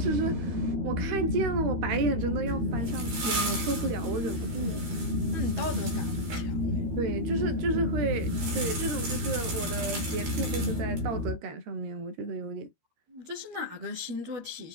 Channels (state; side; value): late; left; 13 ms